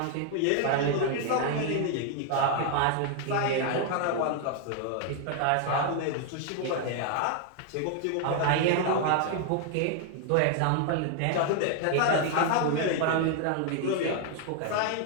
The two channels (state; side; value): different; both; correlation 0.00